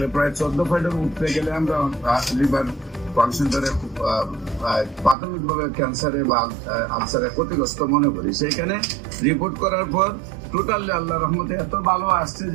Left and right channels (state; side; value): drops out; left; at 5.2 s